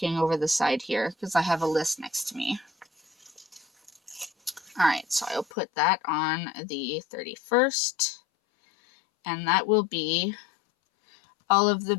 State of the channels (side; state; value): right; drops out; at 5.5 s